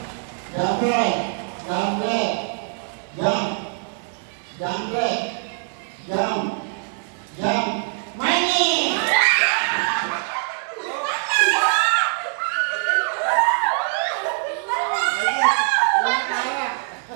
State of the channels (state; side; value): silent; left; 59 dB below the other